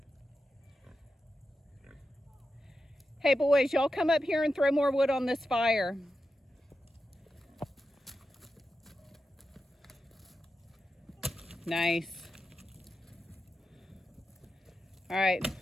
Hey boys, y'all come up here and throw more wood on this fire. Nice. All right,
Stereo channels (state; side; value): normal; both; correlation 0.89